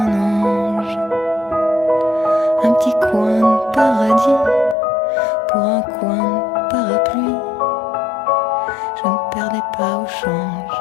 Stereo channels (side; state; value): right; drops out; at 4.8 s